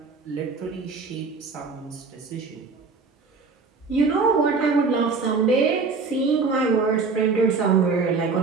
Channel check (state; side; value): quieter; left; 4.5 dB